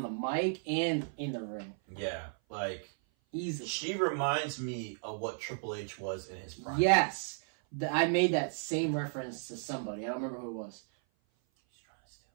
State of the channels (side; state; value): left; silent; 55 dB below the other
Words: the mic and in the ring. Yeah, like easily. She reminds me of what Triple H was in his prime. Yes, I made that same reference to somebody. I don't remember who it was. He's trying to